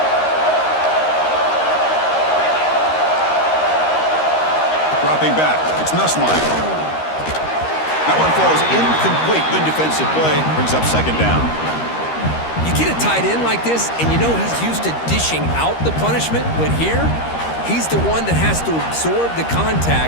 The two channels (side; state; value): right; late; 13 ms